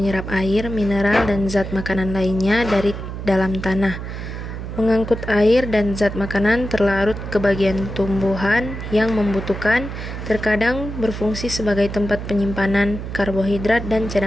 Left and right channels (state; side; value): noise; right; hum, 7 dB below the sound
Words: air, mineral, dan zat makanan lainnya dari dalam tanah. Mengangkut air dan zat makanan terlarut ke bagian tumbuhan yang membutuhkan, terkadang berfungsi sebagai tempat penyimpanan karbohidrat dan